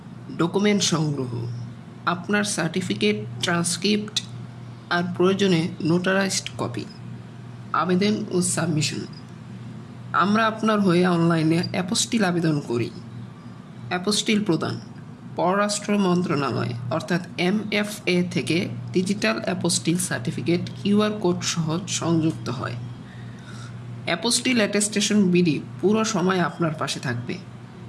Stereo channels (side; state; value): both; identical; correlation 1.00